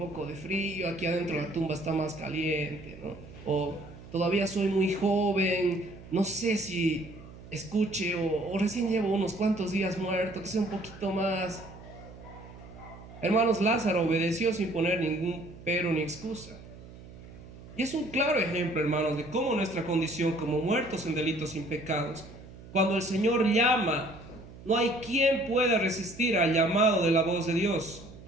de frío, aquí adentro la tumba está más caliente, ¿no? O todavía soy muy joven, no sé si escuche, o recién llevo unos cuantos días muerto, que sea un poquito más. Hermanos, Lázaro obedeció sin poner ningún pero ni excusa. Y es un claro ejemplo, hermanos, de cómo nuestra condición como muertos en delitos y pecados, cuando el Señor llama, no hay quien pueda resistir al llamado de la voz de Dios.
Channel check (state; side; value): noise; right; hum, 17 dB below the sound